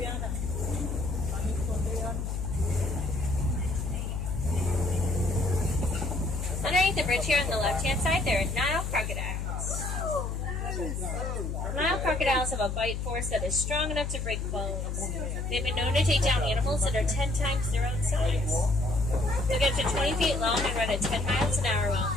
Underneath the bridge here on the left-hand side, there are Nile crocodiles. Nile crocodiles have a bite force that is strong enough to break bones. They've been known to take down animals that are 10 times their own size. They'll get to 20 feet long and run at 10 miles an hour while on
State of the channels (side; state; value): left; noise; hum, 3 dB below the sound